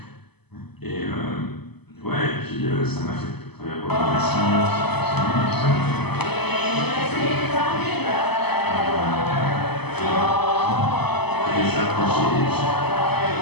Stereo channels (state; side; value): late; right; 0.98 ms